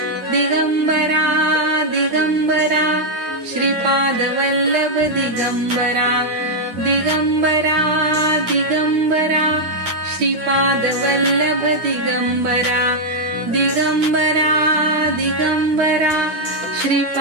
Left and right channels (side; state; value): left; late; 10 ms